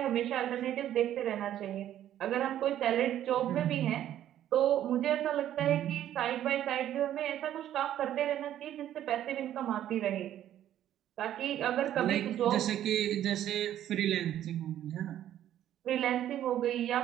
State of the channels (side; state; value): left; quieter; 11.7 dB